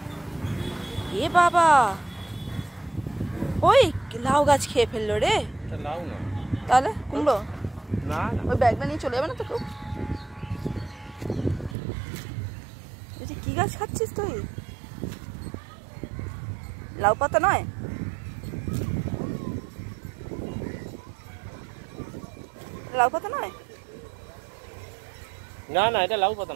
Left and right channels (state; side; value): drops out; left; at 11.8 s